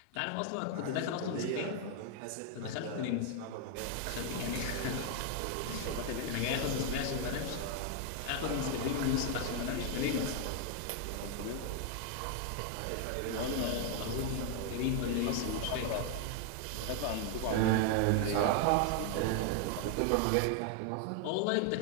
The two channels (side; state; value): both; different; correlation 0.00